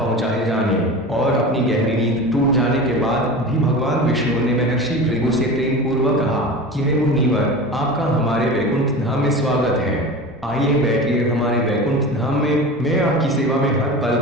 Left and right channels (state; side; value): normal; both; correlation 0.32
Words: जाने और अपनी गहरी नींद टूट जाने के बाद भी भगवान विष्णु ने महर्षि भृगु से प्रेम पूर्वक कहा कि हे मुनिवर, आपका हमारे वैकुंठ धाम में स्वागत है। आइए बैठिए हमारे वैकुंठ धाम में, मैं आपकी सेवा में हर पल